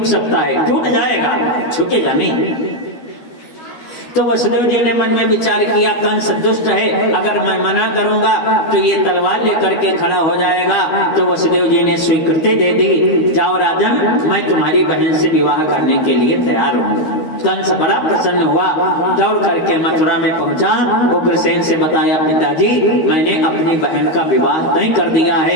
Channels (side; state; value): right; late; 13 ms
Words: सकता है, टूट जाएगा, झुकेगा नहीं। तो वसुदेव जी ने मन में विचार किया, कंस दुष्ट है, अगर मैं मना करूंगा तो ये तलवार लेकर के खड़ा हो जाएगा। तो वसुदेव जी ने स्वीकृति दे दी, जाओ राजन, मैं तुम्हारी बहन से विवाह करने के लिए तैयार हूँ। कंस बड़ा प्रसन्न हुआ, दौड़ करके मथुरा में पहुंचा। उग्रसेन से बताया, पिताजी मैंने अपनी बहन का विवाह तय कर दिया